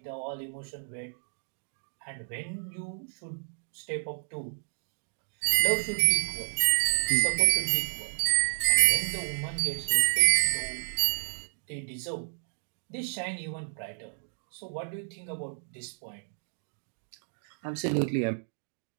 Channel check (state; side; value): silent; left; digital silence